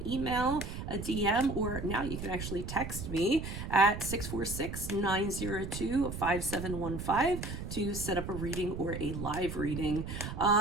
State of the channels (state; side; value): noise; right; rumble, 7 dB below the sound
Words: email, a DM, or now you can actually text me at 646-902-5715 to set up a reading or a live reading.